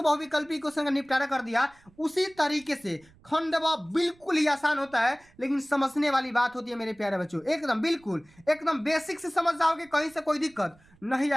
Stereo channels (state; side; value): noise; right; rumble, 29 dB below the sound